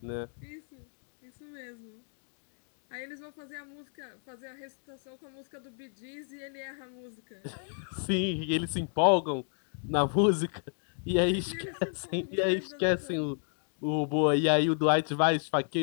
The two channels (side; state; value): right; silent; 57 dB below the other